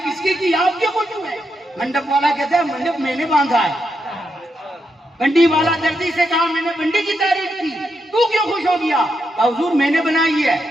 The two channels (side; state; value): both; normal; correlation 0.83